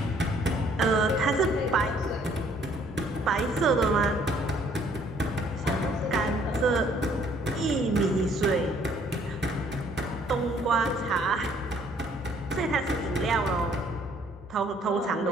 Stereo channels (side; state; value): both; normal; correlation 0.62